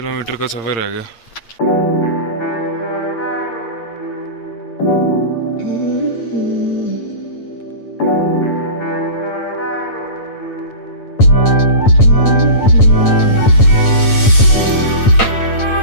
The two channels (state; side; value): late; right; 8.8 ms